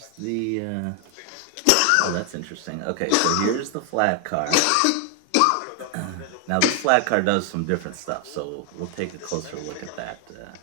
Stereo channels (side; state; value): both; different; correlation 0.00